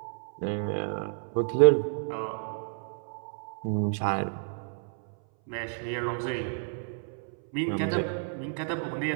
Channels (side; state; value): left; silent; 58 dB below the other